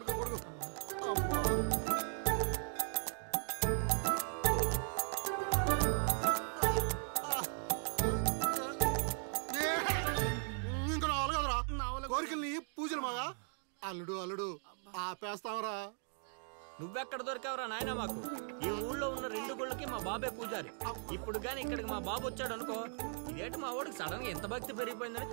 కొడుకు ఇంకా రావాలి కదరా కోరికల్ని పూజలు మగా. అల్లుడు అల్లుడు ఆపేస్తావరా. నువ్వెక్కడ దొరికావురా నాయనా మాకు? ఈ ఊళ్ళో ఉన్న 2 గుళ్ళకి మా బాబే పూజారి. ఇప్పుడు గాని ఇక్కడికి మా బాబు వచ్చాడు అనుకో, ఇదేంటి మా వాడికి సడన్ గా ఎంత భక్తి పెరిగిపోయిందని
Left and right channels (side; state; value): left; silent; 52 dB below the other